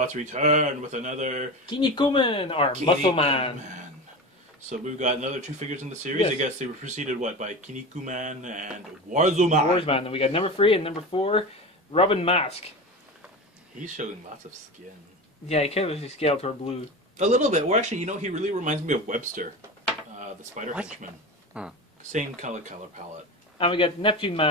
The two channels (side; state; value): both; normal; correlation 0.27